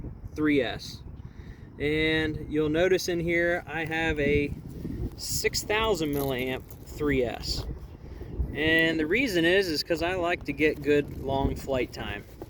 3S. And you'll notice in here I have a 6000 milliamp 3S. And the reason is because I like to get good long flight time.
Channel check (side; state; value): both; identical; correlation 1.00